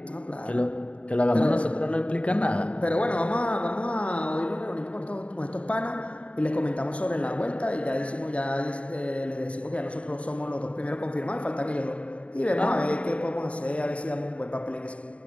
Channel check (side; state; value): right; late; 0.063 ms